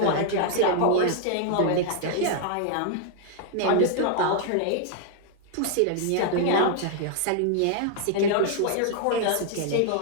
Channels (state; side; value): different; both; correlation 0.00